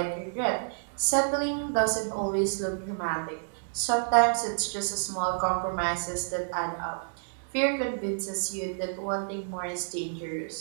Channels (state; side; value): silent; left; digital silence